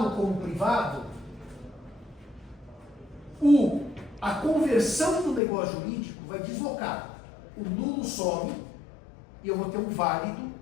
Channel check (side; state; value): right; drops out; at 5.4 s